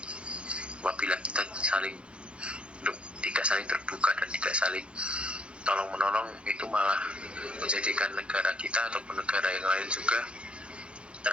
apabila kita tidak saling terbuka dan tidak saling tolong menolong. Itu malah menjadikan negara kita ataupun negara yang lain juga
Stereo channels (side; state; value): left; late; 0.058 ms